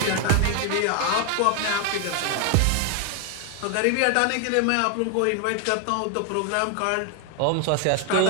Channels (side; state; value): both; different; correlation 0.01